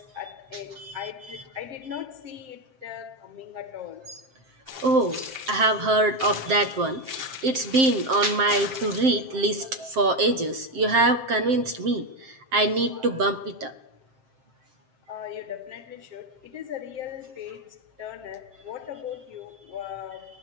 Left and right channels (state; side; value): late; left; 7.6 ms